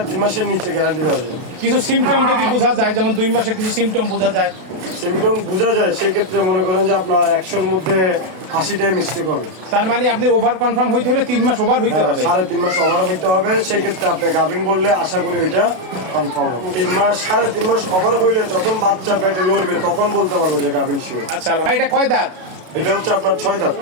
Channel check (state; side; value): late; left; 32 ms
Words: মাসের নিচে গ্যারান্টি দেওয়া যায়। কিছু সিমটম যদি বোঝা যায়, যেমন 2 মাসে কিছু সিমটম বোঝা যায়। সিমটম বোঝা যায়, সেক্ষেত্রে মনে করেন যে আপনার 100-র মধ্যে 80টাই মিস্টেক হবে। তার মানে আপনি ওভার কনফার্ম হইতে হলে 3 মাস ওভার হইতে হবে। 3.5 মাস ওভার হইতে হবে, সেক্ষেত্রে আপনি গাভিন বললে আশা করি ওইটা কনফার্ম হবে। 3 মাস 3.5 মাস ওভার হইলে যখন বাচ্চা পেটে লড়বে তখন বলতে পারবো যে গাভিন শিওর। আচ্ছা ভাই, এটা কয় দাঁত? এটা হচ্ছে আপনার 6 দাঁত।